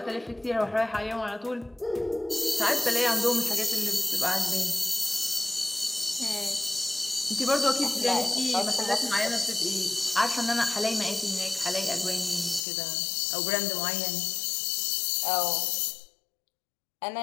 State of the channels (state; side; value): drops out; right; at 12.7 s